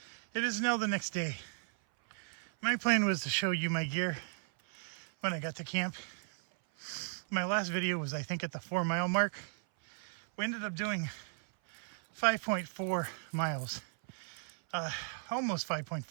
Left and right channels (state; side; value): silent; left; 54 dB below the other